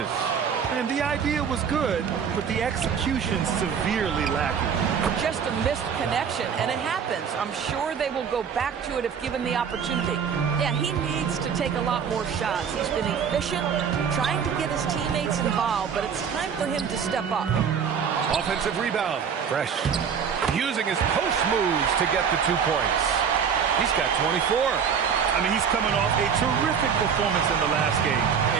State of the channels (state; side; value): quieter; left; 7.1 dB